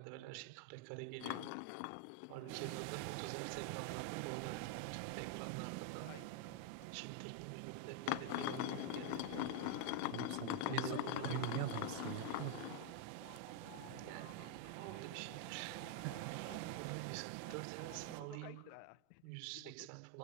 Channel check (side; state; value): both; different; correlation 0.00